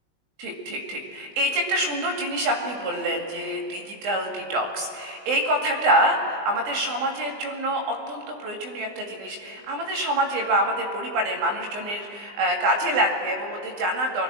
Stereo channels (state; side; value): late; left; 19 ms